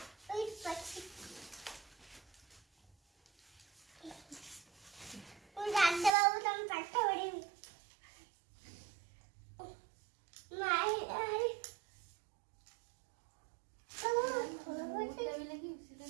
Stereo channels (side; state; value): left; drops out; at 6.1 s